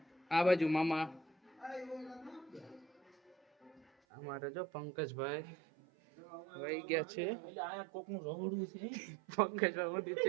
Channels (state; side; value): drops out; left; at 3.9 s